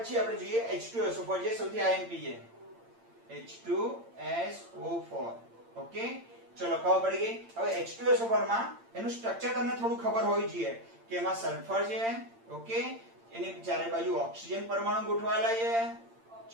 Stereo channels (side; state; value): left; late; 8.8 ms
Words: આપણે જોઈએ H2SO4 જે સૌથી આઈએમપી છે H2SO4 ઓકે ચલો ખબર પડી ગઈ હવે H2SO4 માં એનું સ્ટ્રક્ચર તમને થોડું ખબર હોવી જોઈએ કે એમાં સલ્ફર છે ઓકે એની ચારે બાજુ ઓક્સિજન પરમાણુ ગોઠવાયેલા છે